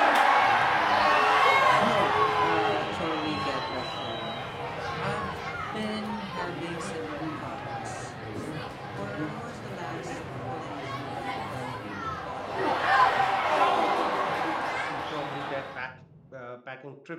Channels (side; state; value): both; identical; correlation 1.00